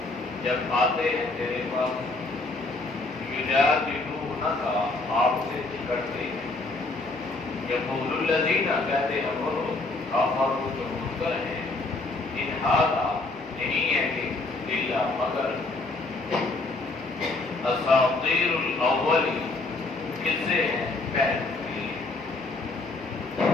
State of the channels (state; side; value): quieter; right; 3.2 dB